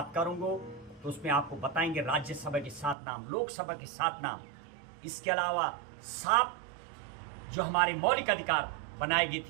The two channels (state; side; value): drops out; left; at 3.0 s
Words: करूंगा तो उसमें आपको बताएंगे राज्यसभा के 7 नाम, लोकसभा के 7 नाम, इसके अलावा 7 जो हमारे मौलिक अधिकार बनाए गए